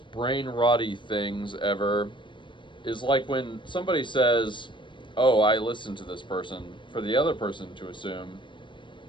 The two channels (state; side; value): late; right; 0.24 ms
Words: brain rotty things ever is like when somebody says, oh, I listened to this person, for the other person to assume